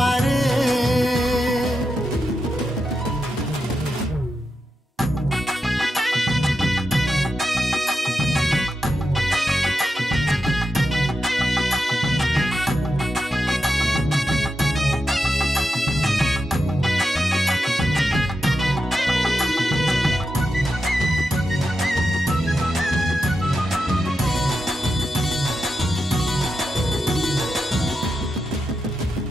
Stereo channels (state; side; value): normal; both; correlation 0.88